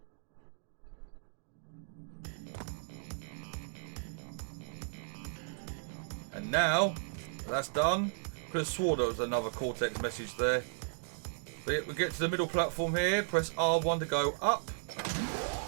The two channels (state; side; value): silent; left; digital silence